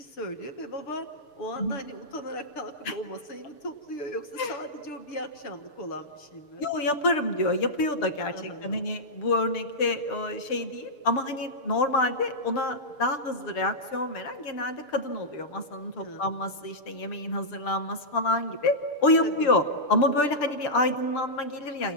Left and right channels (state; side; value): late; right; 6.8 ms